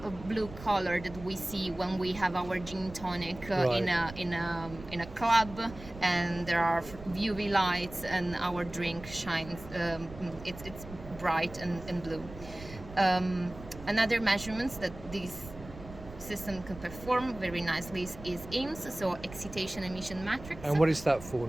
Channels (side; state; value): right; noise; rumble, 15 dB below the sound